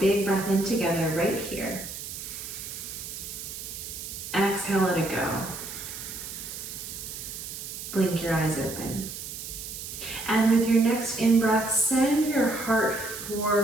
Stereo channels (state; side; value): noise; right; hiss, 9 dB below the sound